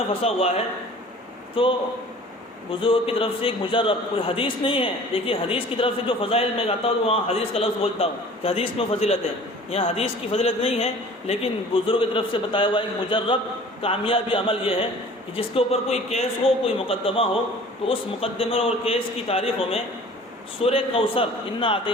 پھنسا ہوا ہے تو بزرگوں کی طرف سے ایک مجرب، کوئی حدیث نہیں ہے. دیکھیے حدیث کی طرف سے جو فضائل میں آتا ہوں تو وہاں حدیث کا لفظ بولتا ہوں کہ حدیث میں فضیلت ہے. یہاں حدیث کی فضیلت نہیں ہے، لیکن بزرگوں کی طرف سے بتایا ہوا ایک مجرب کامیابی عمل یہ ہے کہ جس کے اوپر کوئی کیس ہو، کوئی مقدمہ ہو، تو اس مقدمے اور کیس کی تاریخوں میں سورہ کوثر، انا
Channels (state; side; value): normal; both; correlation 0.46